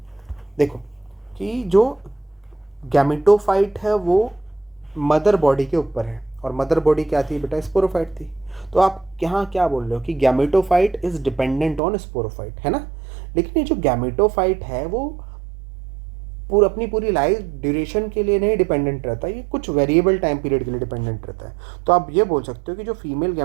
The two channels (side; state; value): left; drops out; at 11.8 s